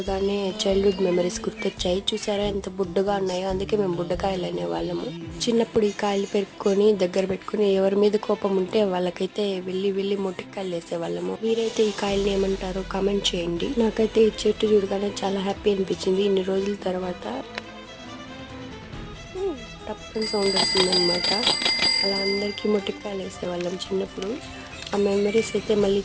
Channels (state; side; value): identical; both; correlation 1.00